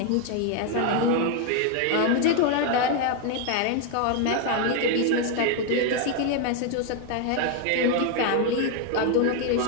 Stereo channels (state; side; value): different; both; correlation 0.01